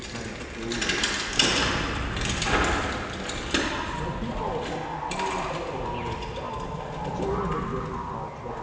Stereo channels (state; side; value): identical; both; correlation 1.00